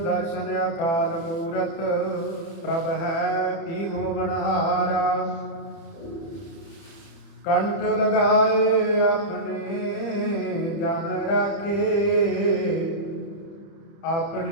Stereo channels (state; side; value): late; right; 31 ms